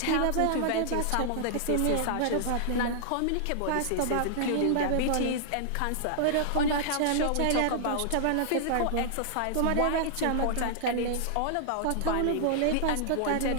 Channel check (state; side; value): different; both; correlation -0.01